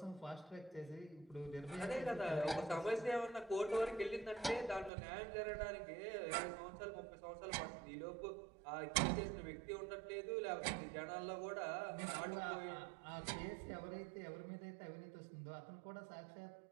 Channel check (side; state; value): left; drops out; at 4.9 s